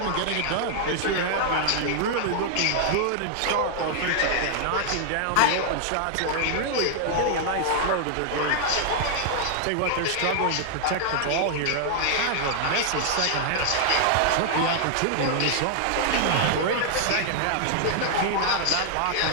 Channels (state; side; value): different; both; correlation -0.01